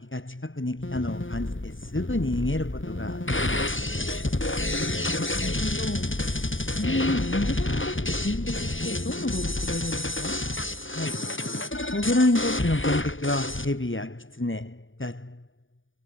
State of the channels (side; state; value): right; late; 0.57 ms